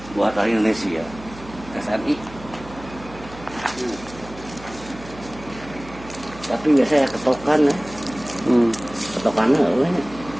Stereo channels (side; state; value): right; noise; hum, 17 dB below the sound